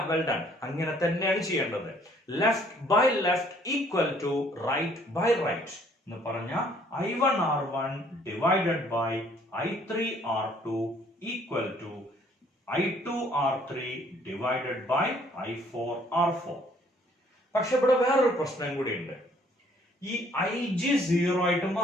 well done. അങ്ങനെ തന്നെയാണ് ചെയ്യേണ്ടത്. Left by left equal to right by right എന്ന് പറഞ്ഞ I1 R1 divided by I3 R2 equal to I2 R3 divided by I4 R4. പക്ഷെ ഇവിടെ വേറൊരു പ്രശ്നം കൂടി ഉണ്ട്. ഈ IG 0 ആയിട്ട്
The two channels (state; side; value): normal; both; correlation 0.61